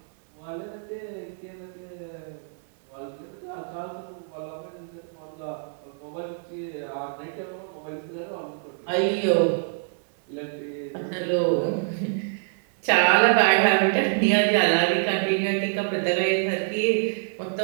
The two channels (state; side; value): silent; left; 61 dB below the other